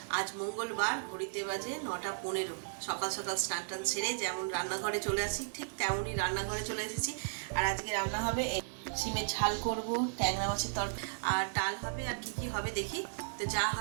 আজ মঙ্গলবার, ঘড়িতে বাজে 9:15। সকাল সকাল স্নান টান সেরে যেমন রান্নাঘরে চলে আসি ঠিক তেমনই রান্নাঘরে চলে এসেছি। আর আজকে রান্না হবে সিমের ঝাল করব, ট্যাংরা মাছের তরকারি আর ডাল হবে। আর কি কি হবে দেখি, তো যা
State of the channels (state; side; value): silent; left; 54 dB below the other